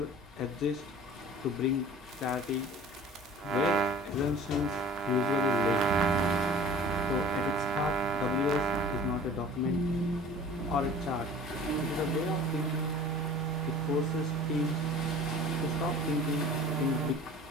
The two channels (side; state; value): both; normal; correlation 0.44